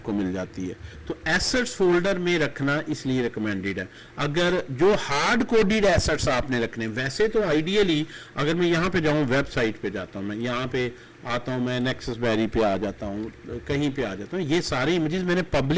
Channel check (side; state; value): both; identical; correlation 1.00